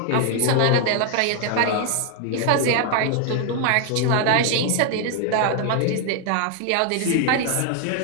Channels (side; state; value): both; different; correlation 0.00